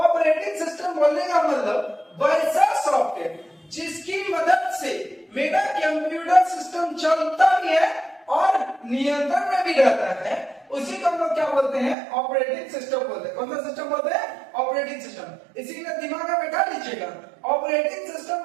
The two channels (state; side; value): drops out; left; at 12.0 s